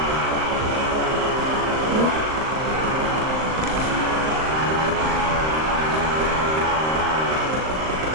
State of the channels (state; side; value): late; left; 38 ms